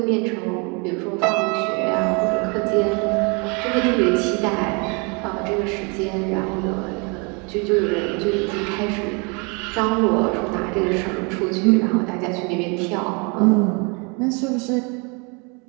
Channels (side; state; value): left; quieter; 32.0 dB